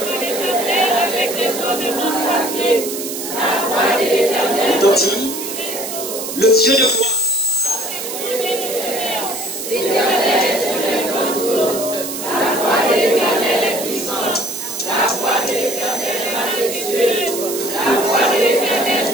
Retentit le Dieu de gloire.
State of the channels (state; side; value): noise; right; hiss, 6 dB below the sound